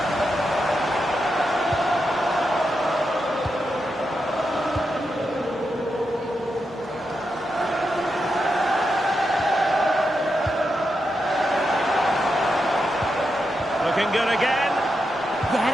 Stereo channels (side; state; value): both; normal; correlation 0.86